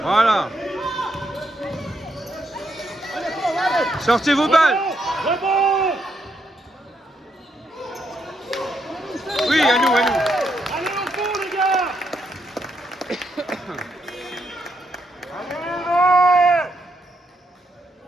Voilà. Sortez vos balles. Oui, à nous, à nous. Allez au fond, les gars.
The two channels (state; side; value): normal; both; correlation 0.79